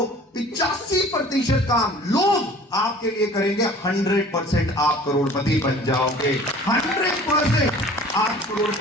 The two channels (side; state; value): both; normal; correlation 0.47